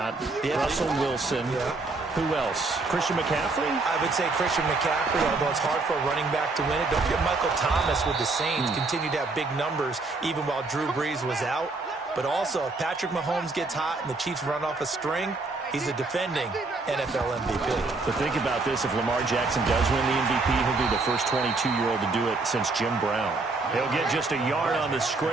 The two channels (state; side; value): quieter; left; 3.5 dB